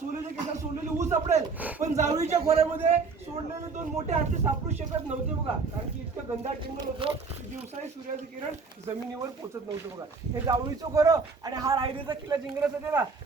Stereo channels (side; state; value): left; quieter; 4.7 dB